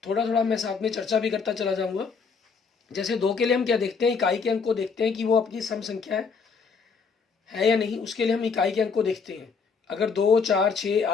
थोड़ा थोड़ा मैं साथ में चर्चा भी करता चला जाऊँगा। जैसे 2 के लिए हम क्या देखते हैं, इकाई के अंक को देखते हैं कि वो अपनी सम संख्या है या नहीं। उसके लिए हम इकाई के अंक को देखते हैं। अगर 2, 4, 6,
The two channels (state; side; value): quieter; right; 5.4 dB